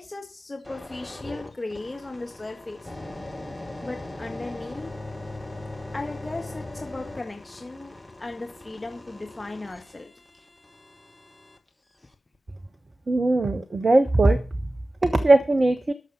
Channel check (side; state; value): both; normal; correlation 0.96